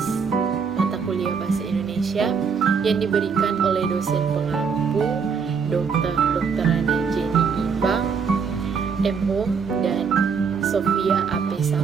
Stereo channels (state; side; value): quieter; left; 6.0 dB